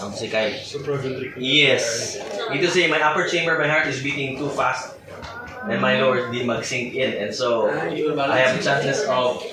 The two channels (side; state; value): both; identical; correlation 1.00